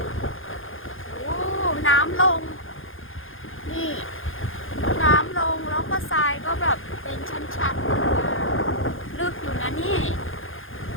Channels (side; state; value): right; late; 0.59 ms